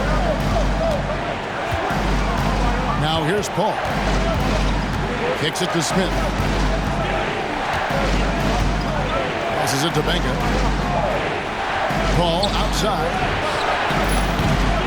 Now here's Paul. Kicks it to Smith. Passes it to Benga. Paul outside.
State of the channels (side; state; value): both; identical; correlation 1.00